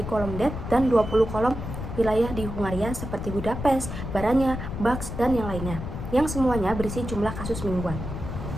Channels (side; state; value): left; noise; rumble, 7 dB below the sound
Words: kolom det dan 20 kolom wilayah di Hungaria seperti Budapest, Baranya, Bax, dan yang lainnya, yang semuanya berisi jumlah kasus mingguan.